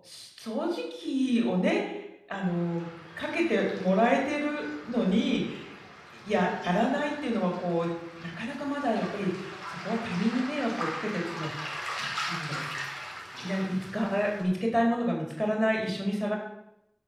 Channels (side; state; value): both; identical; correlation 1.00